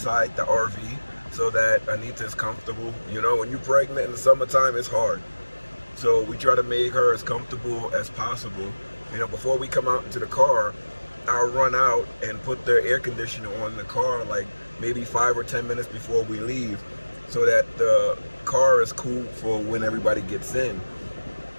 the RV so that Anita is comfortable. You know, when you're pregnant in the summertime, it's hard. So we try to make her as comfortable as possible. You know, before we come out into the car, I'll run out and put the air conditioner on the car like maybe 5 or 10 minutes before we leave so that the car is cool for when everybody gets in.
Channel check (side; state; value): both; inverted; correlation -1.00